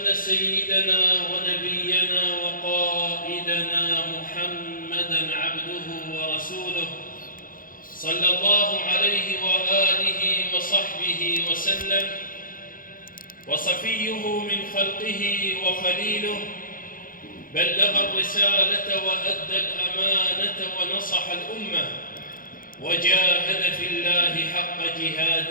سيدنا ونبينا وقائدنا محمدًا عبده ورسوله صلى الله عليه وآله وصحبه وسلم، وصفيه من خلقه وخليله، بلغ الرسالة وأدى الأمانة ونصح الأمة وجاهد في الله حق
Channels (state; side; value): late; right; 0.40 ms